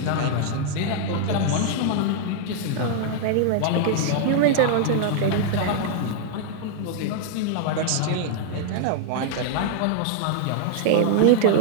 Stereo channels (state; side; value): different; both; correlation 0.00